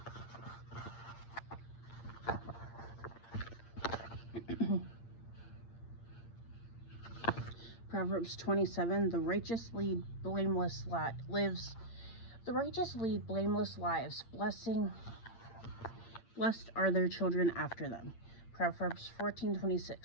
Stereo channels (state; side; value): late; right; 8.7 ms